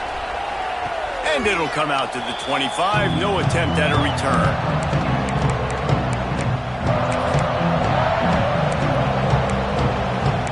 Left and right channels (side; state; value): both; identical; correlation 1.00